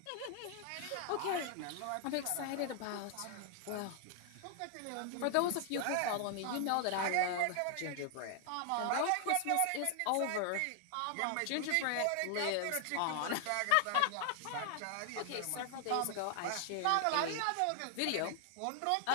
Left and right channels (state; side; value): different; both; correlation 0.00